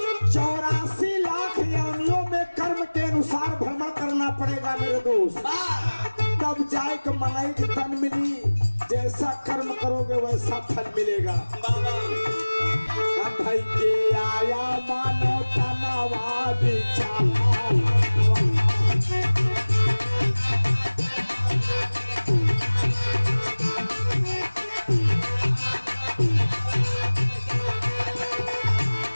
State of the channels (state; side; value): inverted; both; correlation -1.00